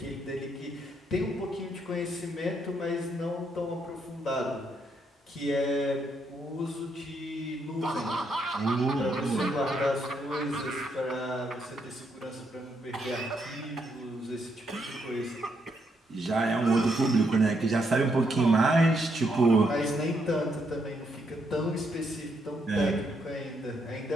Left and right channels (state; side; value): normal; both; correlation 0.76